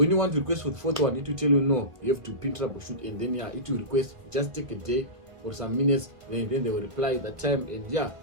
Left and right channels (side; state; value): left; late; 1.3 ms